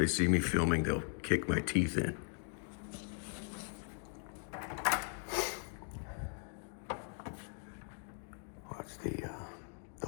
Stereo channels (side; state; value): right; silent; 52 dB below the other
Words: see me filming, they'll kick my teeth in. Watch